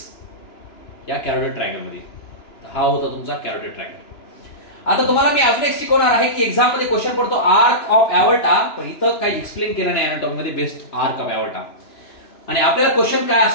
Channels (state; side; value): late; right; 2.9 ms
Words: या कॅरोटिड ट्रायंगल मध्ये. हा होता तुमचा कॅरोटिड ट्रायंगल. आता तुम्हाला मी अजून एक शिकवणार आहे की एक्झाम मध्ये क्वेश्चन पडतो आर्क ऑफ एवर्टा, पण इथं काही एक्सप्लेन केलं नाही अनाटॉमी मध्ये बेस्ट आर्क ऑफ एवर्टा. आणि आपल्याला क्वेश्चन काय